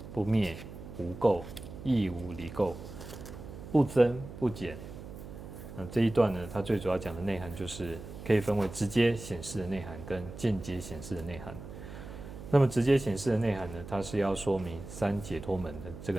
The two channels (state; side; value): noise; right; hum, 12 dB below the sound